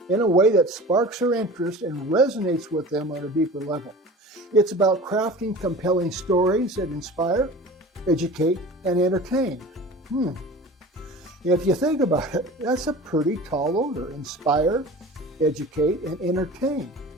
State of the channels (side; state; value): both; normal; correlation 0.38